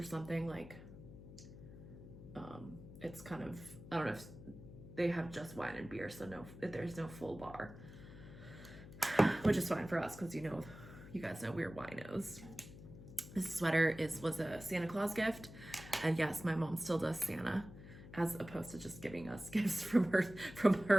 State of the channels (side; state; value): left; noise; hum, 15 dB below the sound